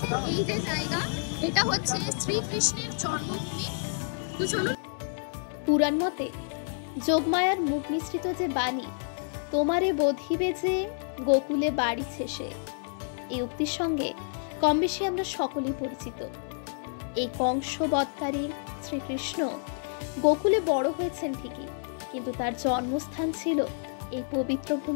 এই যে জায়গা, এটা হচ্ছে শ্রীকৃষ্ণের জন্মভূমি। তো চলুন। পুরাণ মতে যোগমায়ার মুখ মিশ্রিত যে বাণী, তোমারে বোধিবে যে গোকুলে বাড়ি শেষে, এই উক্তির সঙ্গে কম বেশি আমরা সকলেই পরিচিত। এই কংস বধকারী শ্রীকৃষ্ণ গোকুলে বড় হয়েছেন ঠিকই, কিন্তু তার জন্মস্থান ছিল এই পবিত্র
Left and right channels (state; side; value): silent; right; 57 dB below the other